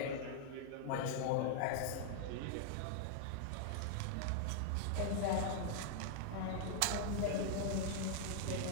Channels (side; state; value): both; different; correlation -0.01